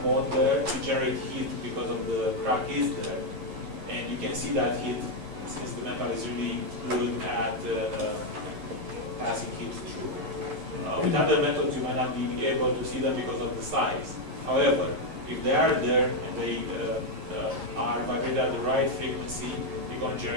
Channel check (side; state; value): left; late; 11 ms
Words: mode there, you generate heat because of the crack is there. And you can see that heat, since the metal is really good at passing heat through. With other methods, you might not be able to see them because of the size. However, if they are there and they are vibrated at the right frequency, you're going to